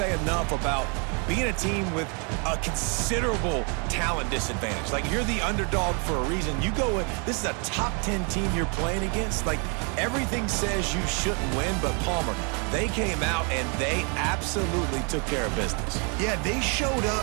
enough about being a team with a considerable talent disadvantage. Like, you're the underdog for a reason. You go in, this is a top 10 team you're playing against. Like, everything says you shouldn't win, but Palmer, they came out and they absolutely took care of business. Yeah, they showed up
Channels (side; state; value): left; quieter; 36.1 dB